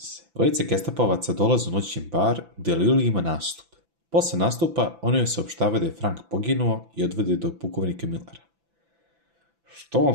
Dvojica gestapovaca dolaze u noćni bar gdje Lili ima nastup. Posle nastupa oni joj saopštavaju da je Frank poginuo i odvede do pukovnika Millera. Što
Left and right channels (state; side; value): late; left; 5.9 ms